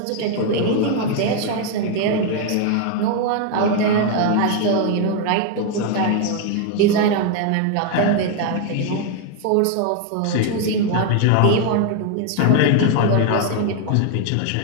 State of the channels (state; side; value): different; both; correlation 0.00